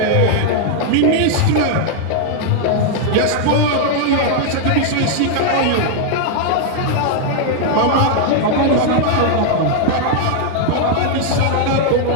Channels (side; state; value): both; different; correlation 0.00